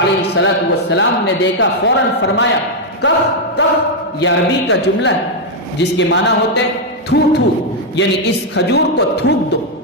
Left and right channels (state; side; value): normal; both; correlation 0.00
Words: علیہ السلام نے دیکھا، فوراً فرمایا کف کف، یہ عربی کا جملہ ہے جس کے معنی ہوتے تھو تھو، یعنی اس کھجور کو تھوک دو۔